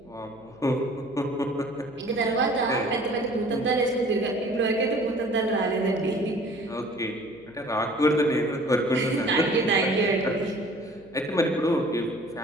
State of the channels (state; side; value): noise; right; hum, 28 dB below the sound